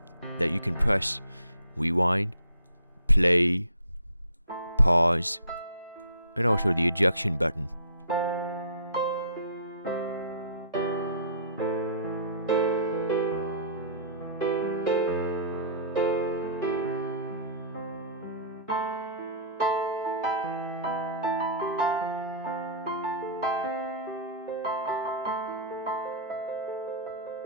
that you can press: rewind, play, pause, and also the ejection button.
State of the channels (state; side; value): inverted; both; correlation -0.47